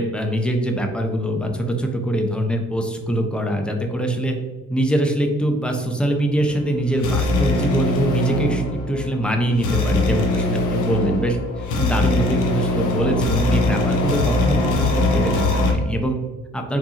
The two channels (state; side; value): normal; both; correlation 0.59